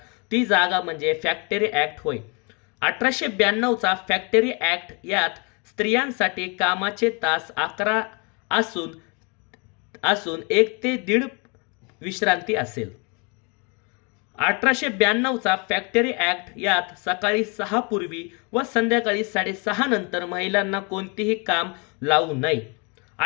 ती जागा म्हणजे फॅक्टरी ॲक्ट होय. 1892 चा फॅक्टरी ॲक्ट यात स्त्रियांसाठी कामाचे तास 11 असून 1 ते 1.5 विश्रांती असेल. 1892चा फॅक्टरी ॲक्ट, यात सकाळी 6 पूर्वी व संध्याकाळी 6:30 नंतर महिलांना कोणतेही काम लावू नये.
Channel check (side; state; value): right; quieter; 32.5 dB